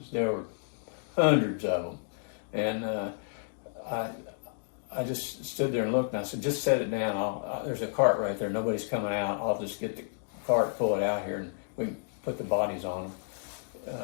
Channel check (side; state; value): right; silent; digital silence